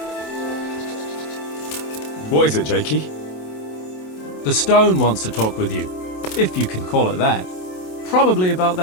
What is it, Jakey? The stone wants to talk with you, if you can call it that. Probably about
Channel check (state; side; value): late; right; 27 ms